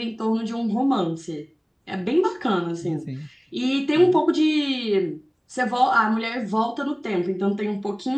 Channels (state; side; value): identical; both; correlation 1.00